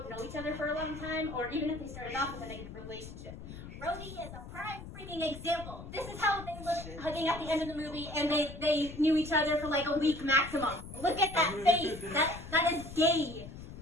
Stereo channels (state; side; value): noise; left; rumble, 12 dB below the sound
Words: other for a long time, or even if they started off with a negative relationship. Rhodey is a prime freaking example. This is how they look hugging at the end of the movie, and they knew each other for like a week maximum. Look at that face. That is gay.